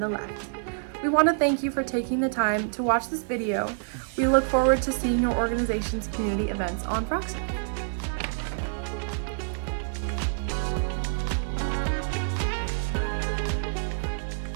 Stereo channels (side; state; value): left; silent; 60 dB below the other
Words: left. We want to thank you for taking the time to watch this video. We look forward to seeing your organization's community events on RockServe.